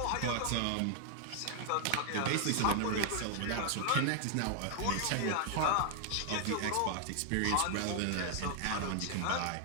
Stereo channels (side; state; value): both; different; correlation 0.00